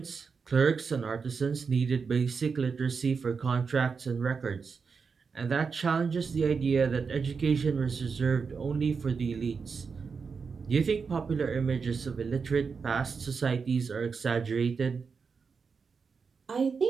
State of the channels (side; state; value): left; quieter; 5.4 dB